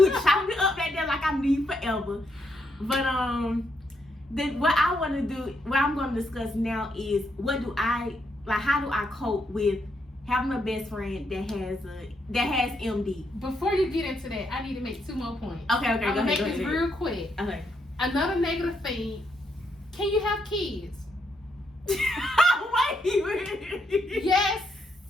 were chopping it up back there like I knew you forever. But what I want to do, what I'm going to discuss now is how do I cope with having a best friend that has MD? Before you get into that, I need to make 2 more points. Okay, I'm gonna make ahead, this real quick. Okay. Another negative thing. Can you have kids? Wait. Yes,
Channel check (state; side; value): normal; both; correlation 0.77